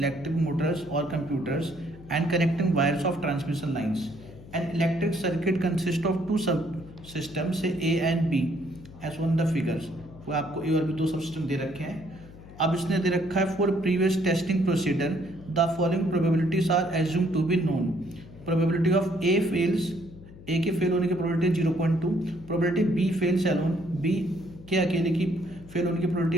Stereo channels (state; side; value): noise; left; hum, 18 dB below the sound